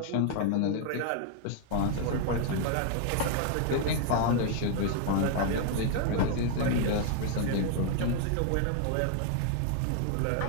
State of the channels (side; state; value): both; different; correlation 0.00